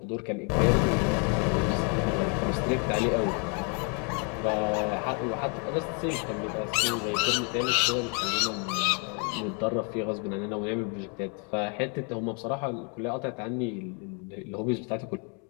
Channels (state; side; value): quieter; right; 37.7 dB